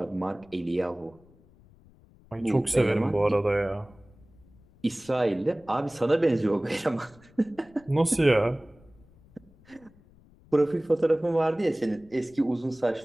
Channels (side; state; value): left; noise; rumble, 27 dB below the sound